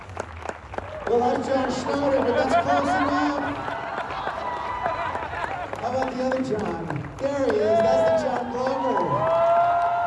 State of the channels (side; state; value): both; identical; correlation 1.00